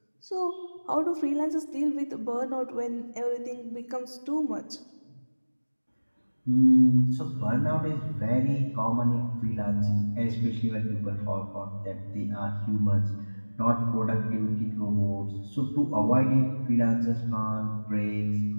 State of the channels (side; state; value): both; inverted; correlation -1.00